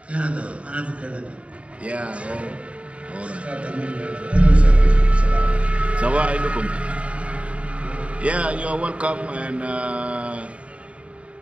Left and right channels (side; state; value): left; late; 0.063 ms